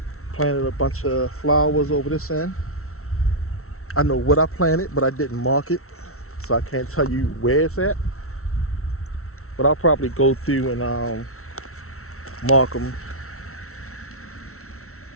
planted a bunch of flowers over this end. I know what I planted, but I didn't mark it, so I can't tell you where it's at. But I'll probably go through and mark them.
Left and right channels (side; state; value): right; late; 0.63 ms